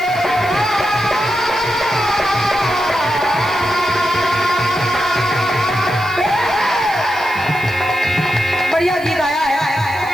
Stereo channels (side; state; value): right; noise; hiss, 21 dB below the sound